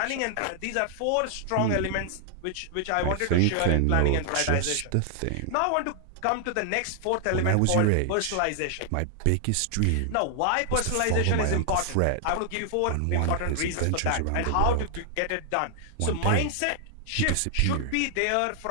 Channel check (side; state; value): both; different; correlation 0.00